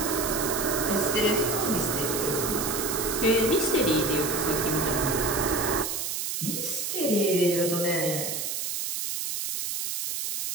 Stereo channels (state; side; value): noise; right; hiss, 3 dB below the sound